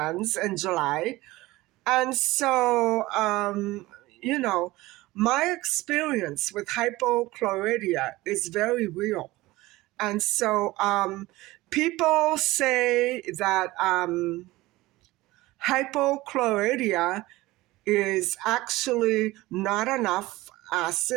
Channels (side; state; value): left; quieter; 19.1 dB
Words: in July. And so, you know, my experience with hypochlorhydia is very real. And so people say that hypochlorhydia is actually not enough